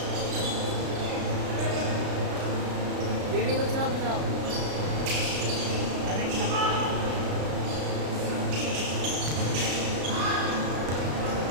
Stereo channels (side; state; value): left; late; 33 ms